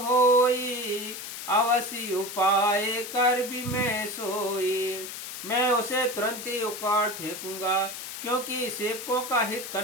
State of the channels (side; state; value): left; noise; hiss, 9 dB below the sound